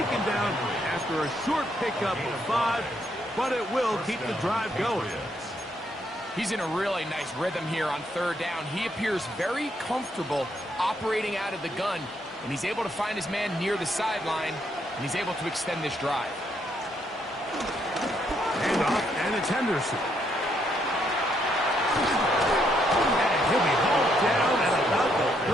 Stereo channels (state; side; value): normal; both; correlation 0.74